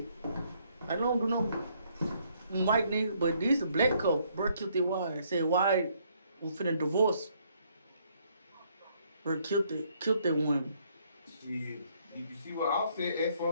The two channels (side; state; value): both; inverted; correlation -0.68